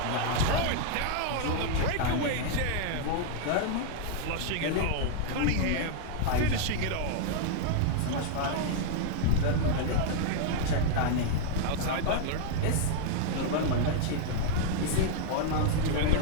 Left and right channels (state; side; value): different; both; correlation 0.00